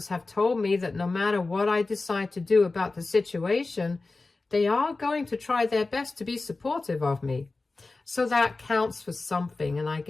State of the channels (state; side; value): quieter; right; 3.5 dB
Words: have told me that no matter what I decide to do about the situation, they are going to try their best to be supportive of me. So that counts for something, and I